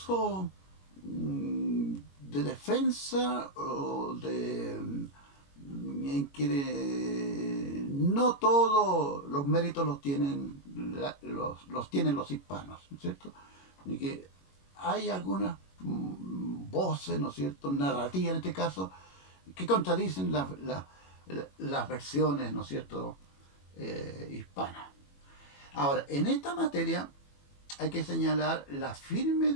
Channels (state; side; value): late; right; 21 ms